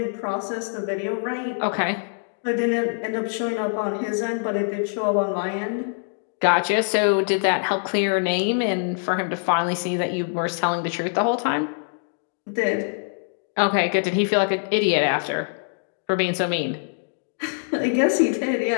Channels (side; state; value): right; silent; digital silence